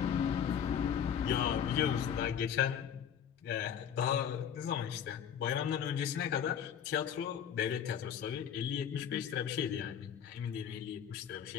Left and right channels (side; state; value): right; quieter; 8.6 dB